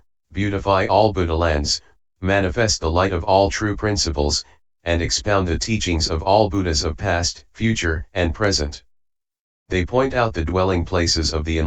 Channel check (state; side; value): identical; both; correlation 1.00